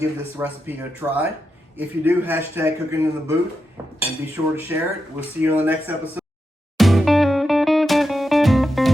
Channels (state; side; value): normal; both; correlation 0.87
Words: this recipe a try. If you do, hashtag cooking in the booth and be sure to share it. We'll see you on the next episode.